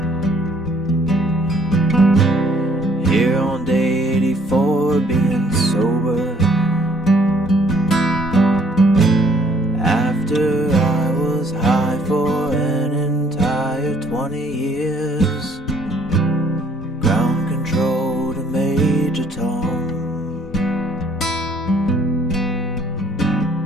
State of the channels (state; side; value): normal; both; correlation 0.62